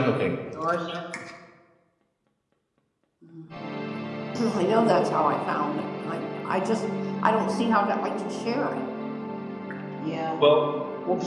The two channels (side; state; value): both; identical; correlation 1.00